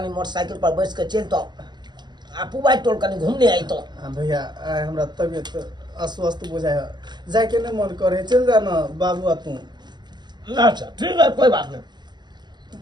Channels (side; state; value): left; late; 0.21 ms